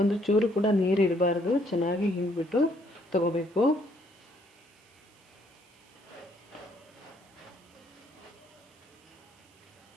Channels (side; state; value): right; noise; hiss, 30 dB below the sound